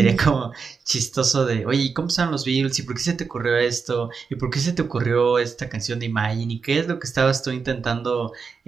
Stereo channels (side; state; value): left; quieter; 5.4 dB